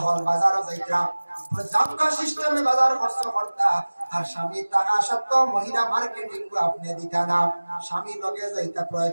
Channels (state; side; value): inverted; both; correlation -1.00